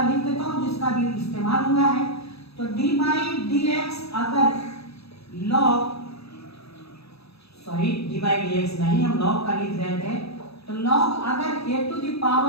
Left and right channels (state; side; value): late; right; 0.78 ms